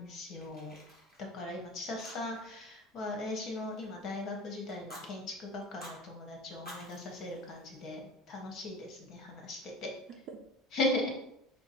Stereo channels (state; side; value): normal; both; correlation 0.36